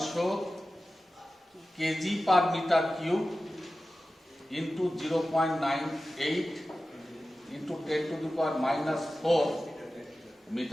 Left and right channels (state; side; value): normal; both; correlation 0.95